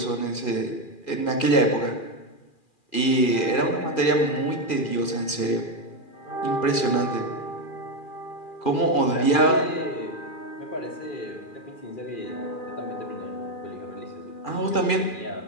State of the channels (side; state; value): right; late; 2.4 ms